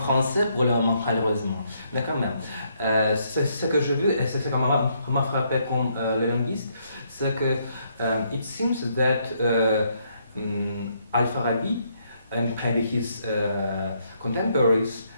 pour le moment, malheureusement. Mais quand même, ce que j'ai vu, et c'est ce qui m'a frappé comme le linguiste, c'est que it seems that Al-Farabi and maybe his contemporaries,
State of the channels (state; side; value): inverted; both; correlation -0.73